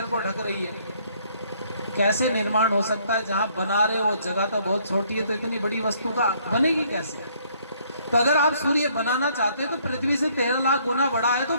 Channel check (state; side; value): inverted; both; correlation -0.65